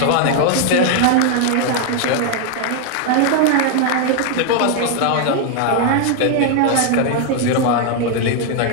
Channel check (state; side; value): different; both; correlation 0.00